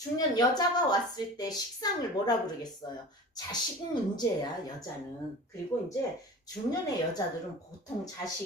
여자가 왔을 때 식상을 뭐라 그러겠어요? 자식 문제야, 여자는. 그리고 이제 중년의 여자들은 보통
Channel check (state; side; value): normal; both; correlation 0.37